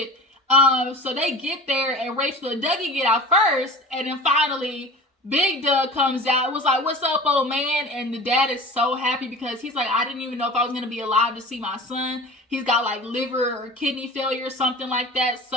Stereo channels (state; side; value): normal; both; correlation 0.37